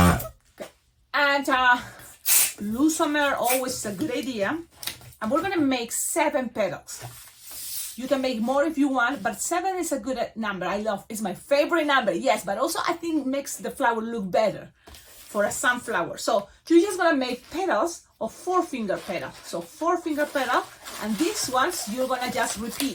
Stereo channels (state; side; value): identical; both; correlation 1.00